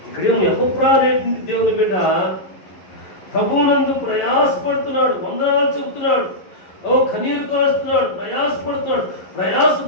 ఇక్కడేమో ఎపఫ్రా అనేటువంటి దేవుని బిడ్డ ప్రభువునందు ప్రయాసపడుతున్నాడు, వందనాలు చెబుతున్నాడు, కన్నీరు కాస్తున్నాడు,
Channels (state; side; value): late; right; 11 ms